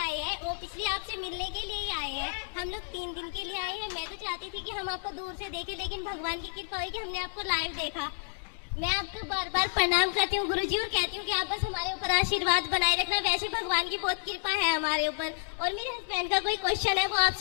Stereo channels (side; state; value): right; silent; digital silence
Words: आए हैं, वो पिछले आपसे मिलने के लिए ही आए हैं। हम लोग 3 दिन के लिए आए हैं। मैं तो चाहती थी कि हम आपको दूर से देखें, लेकिन भगवान की कृपा हुई कि हमने आपको लाइव देखा। मैं आपको बार बार प्रणाम करती हूँ गुरुजी, और कहती हूँ कि आप बस हमारे ऊपर आशीर्वाद बनाए रखना। वैसे भगवान की बहुत कृपा है हमारे ऊपर। और मेरे हस्बैंड का कोई क्वेश्चन है, वो